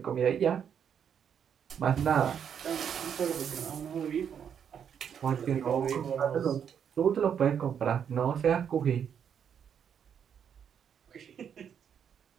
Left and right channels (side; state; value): left; quieter; 8.1 dB